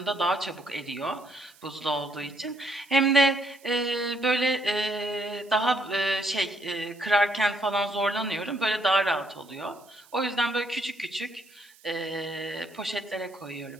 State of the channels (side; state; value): right; noise; hiss, 26 dB below the sound